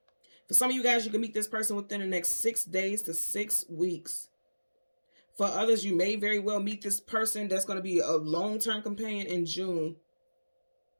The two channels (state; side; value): inverted; both; correlation -1.00